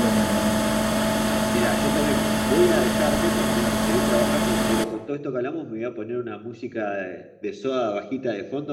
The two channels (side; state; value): both; identical; correlation 1.00